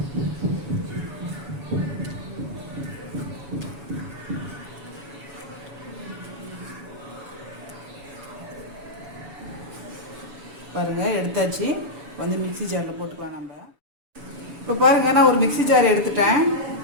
பாருங்கள், எடுத்தாச்சு. மிக்ஸி ஜாரில் போட்டுக்கலாம் நம்ம. இப்போ பாருங்கள், நான் ஒரு மிக்ஸி ஜார்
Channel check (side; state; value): left; late; 7.0 ms